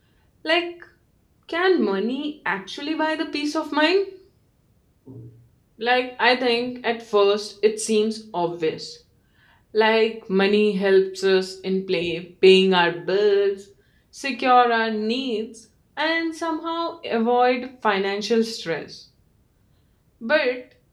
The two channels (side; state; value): both; identical; correlation 1.00